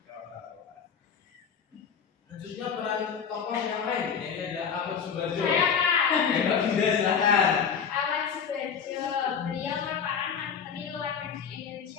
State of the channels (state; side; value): quieter; right; 6.9 dB